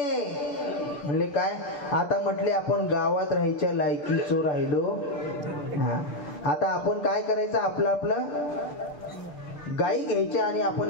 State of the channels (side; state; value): right; late; 6.9 ms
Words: म्हणले काय? आता म्हटले आपण गावात राहायच्या लायकीचो राहिलो. आता आपण काय करायचं, आपलं आपलं गायी घ्यायच्या आणि